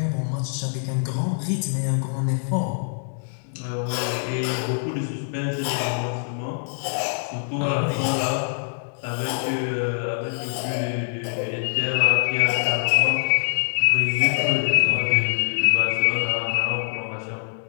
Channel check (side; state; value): right; silent; digital silence